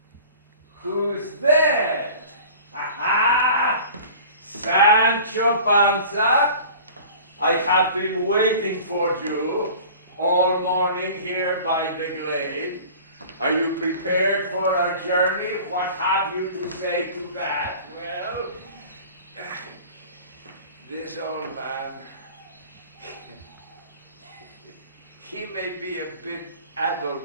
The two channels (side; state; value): both; inverted; correlation -0.43